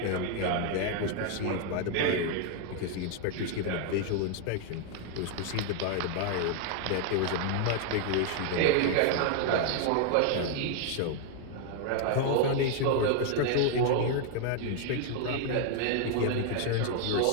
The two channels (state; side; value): different; both; correlation 0.00